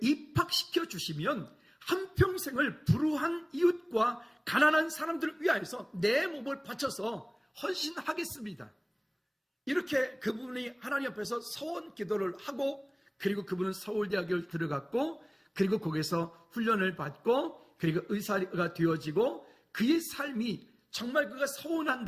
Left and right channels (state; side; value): identical; both; correlation 1.00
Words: 입학시켜 주시면 한평생을 불우한 이웃과 가난한 사람들을 위하여서 내 몸을 바쳐서 헌신하겠습니다. 이렇게 그분이 하나님 앞에서 서원 기도를 하고, 그리고 그분은 서울대학교를 들어갔고, 그리고 거기서 훈련을 받고, 그리고 의사가 되어지고, 그의 삶이 정말 그가 서운한